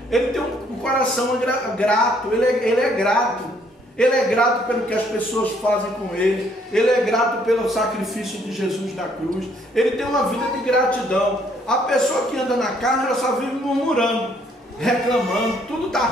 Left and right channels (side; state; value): both; normal; correlation 0.66